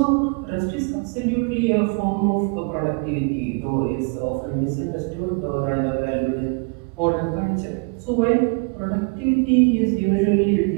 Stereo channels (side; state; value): left; quieter; 34.0 dB